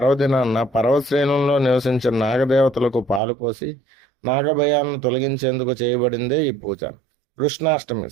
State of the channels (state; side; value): drops out; left; at 3.2 s